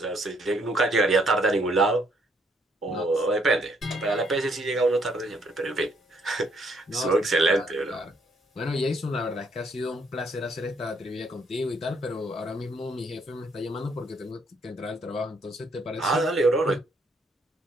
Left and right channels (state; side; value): normal; both; correlation 0.70